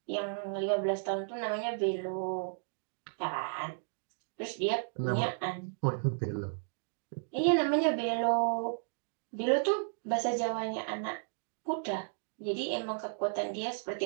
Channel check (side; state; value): left; silent; digital silence